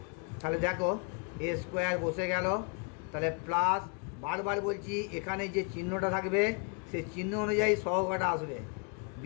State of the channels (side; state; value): right; quieter; 34.9 dB